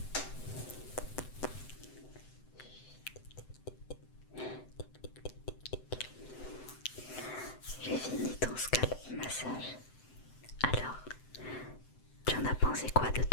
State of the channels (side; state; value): right; late; 7.8 ms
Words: J'ai fini ton scalp massage. Alors, tu en as pensé quoi de